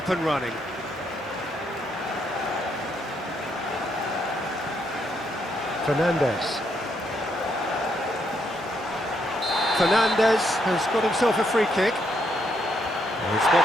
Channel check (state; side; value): normal; both; correlation 0.76